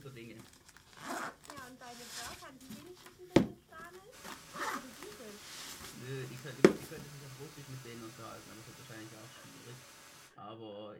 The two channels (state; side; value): identical; both; correlation 1.00